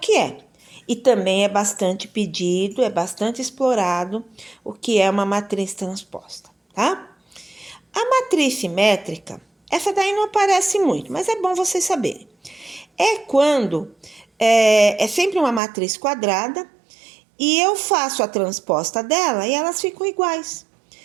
é. E também é bastante pedido, é bastante explorado o que é uma matriz transposta, tá? A matriz simétrica, essa daí não aparece muito, mas é bom vocês saberem. É quando é sempre uma matriz quadrada e eu faço a transposta dela e elas ficam iguais.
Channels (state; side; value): drops out; left; at 15.6 s